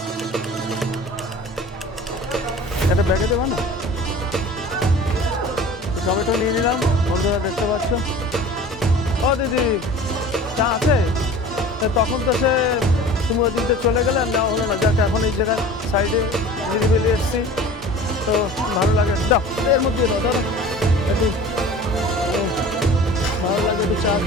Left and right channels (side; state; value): both; normal; correlation 0.41